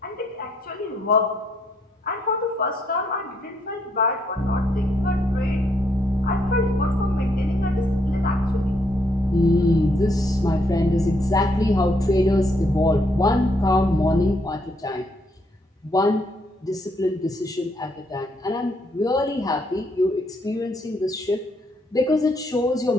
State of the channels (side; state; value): both; normal; correlation 0.73